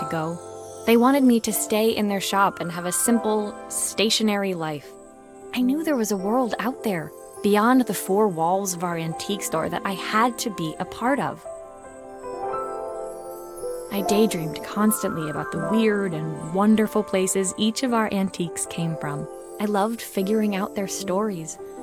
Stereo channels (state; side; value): identical; both; correlation 1.00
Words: go. They wanted me to stay in their shop and have a simple, stationary life. I knew there was a world out there, beyond the four walls of our antique store, that I had to be a part of. I daydreamed constantly about the weird and wonderful places each of our antiques came from. I loved figuring out their stories,